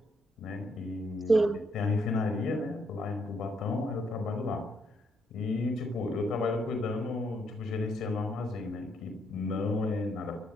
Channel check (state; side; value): normal; both; correlation 0.74